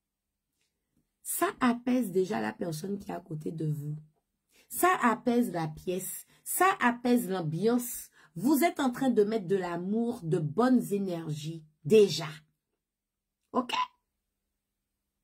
ça apaise déjà la personne qui est à côté de vous. Ça apaise la pièce. Ça apaise l'ambiance. Vous êtes en train de mettre de l'amour, de bonnes énergies, déjà. OK?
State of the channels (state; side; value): identical; both; correlation 1.00